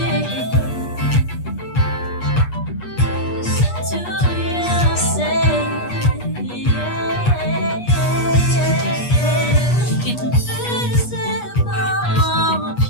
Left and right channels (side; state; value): right; late; 8.3 ms